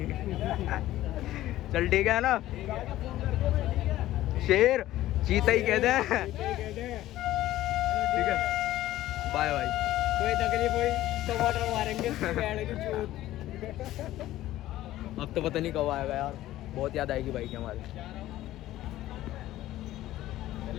चल ठीक है ना शेर, चीता ही कहते हैं। ठीक है बाय बाय। कोई तकलीफ हुई टमाटर मारेंगे अब तो पता नहीं कब आएगा यार, बहुत याद आएगी भाई की हमारी।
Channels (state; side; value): quieter; right; 14.8 dB